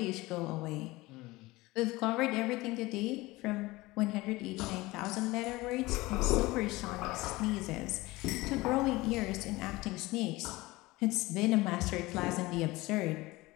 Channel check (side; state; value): right; quieter; 20.6 dB